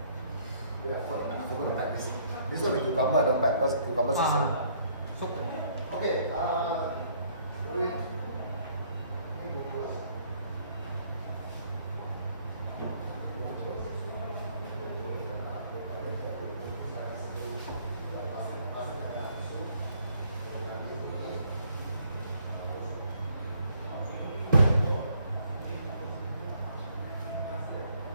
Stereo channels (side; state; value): both; inverted; correlation -0.64